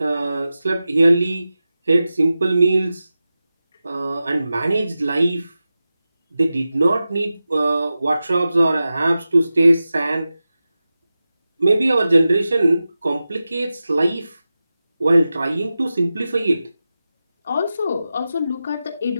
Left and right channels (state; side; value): inverted; both; correlation -0.93